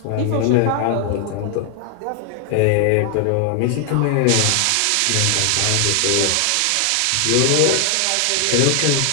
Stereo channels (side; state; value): both; different; correlation 0.00